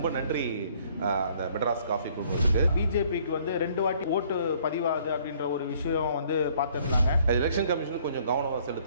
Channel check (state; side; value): inverted; both; correlation -0.61